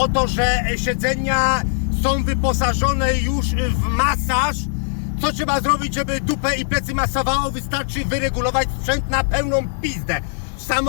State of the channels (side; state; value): right; silent; digital silence